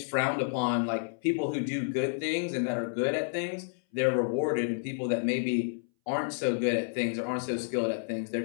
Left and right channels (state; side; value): silent; right; 58 dB below the other